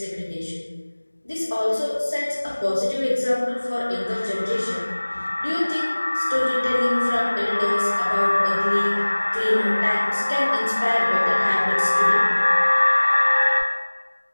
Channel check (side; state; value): both; inverted; correlation -1.00